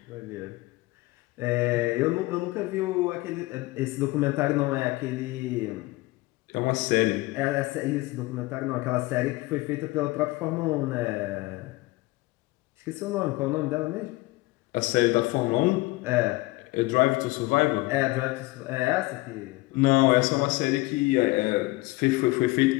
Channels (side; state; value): right; quieter; 21.0 dB